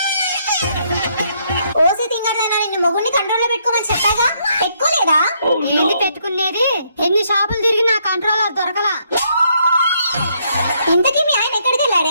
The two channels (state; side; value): inverted; both; correlation -0.72